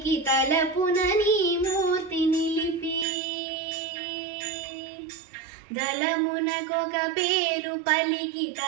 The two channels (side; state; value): left; drops out; at 3.1 s